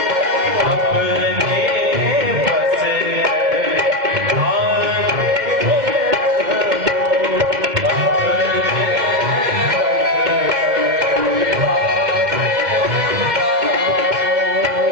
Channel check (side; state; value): left; late; 2.1 ms